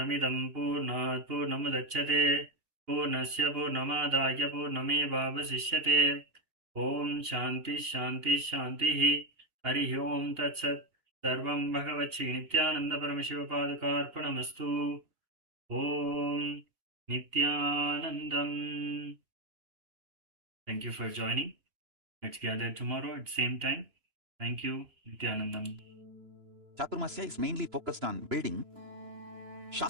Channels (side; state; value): left; late; 2.8 ms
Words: Purnat Purnamudachyate Purnasya Purnamadaya Purnamevavasishyate. Om Shanti Shanti Shanti Hari Om Tat Sat. Sarvam Bhagavati Nithyananda Paramashivapadukarpanamastu. Om Nithyanandam. Thank you for joining. Let's gather tomorrow at the same time. Thank you, Nithyanandam. Chaturmasya is mainly focused on building